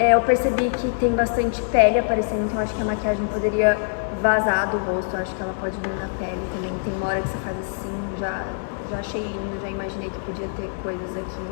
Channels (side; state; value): right; silent; digital silence